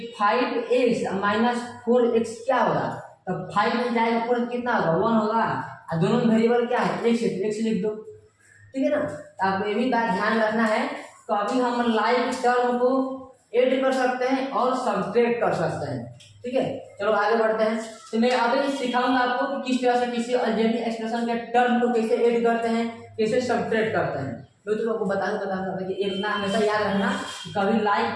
5x - 4x क्या होगा, तो 5 में जाएगा 4 कितना होगा 1 होगा, और दोनों में वेरिएबल क्या है x, x लिख दो, ठीक है ना। तो आपको ये भी बात ध्यान रखना है, तो अभी हम लाइक टर्म को ऐड कर सकते हैं और सब्ट्रैक्ट कर सकते हैं, ठीक है। चलो आगे बढ़ते हैं। तो मैं अभी सिखाऊंगा आपको कि किस तरह से किसी अलजेब्रिक एक्सप्रेशन के टर्म को कैसे ऐड करते हैं, कैसे सब्ट्रैक्ट करते हैं। मैं तो आपको बताऊंगा कि इतना हमेशा याद रखना, कभी लाइक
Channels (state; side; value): identical; both; correlation 1.00